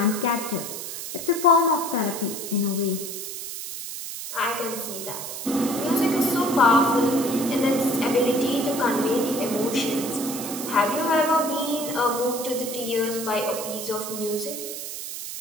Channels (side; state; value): right; noise; hiss, 7 dB below the sound